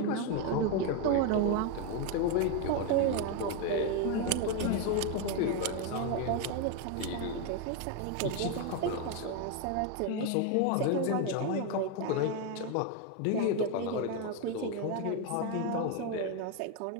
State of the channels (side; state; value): both; different; correlation 0.02